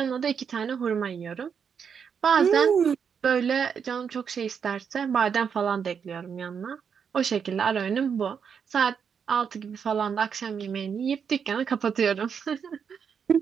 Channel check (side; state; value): left; quieter; 6.9 dB